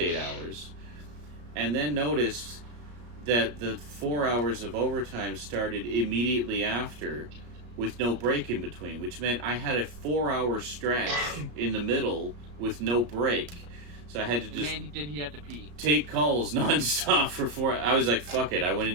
hours, and then noticed that the 4 hours of overtime started immediately after with no break in between, which meant I had a 4-hour stretch in the middle with no break. So I had to just did he have to pee? take calls nonstop for 4 hours. I was like, fuck it. I went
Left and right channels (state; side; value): late; left; 34 ms